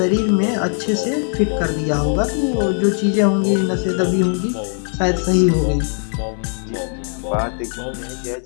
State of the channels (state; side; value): silent; right; 56 dB below the other